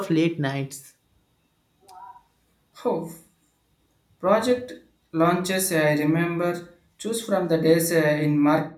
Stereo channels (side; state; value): both; identical; correlation 1.00